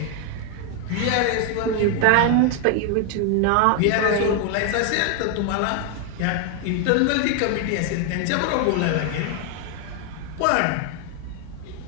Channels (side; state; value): both; different; correlation 0.00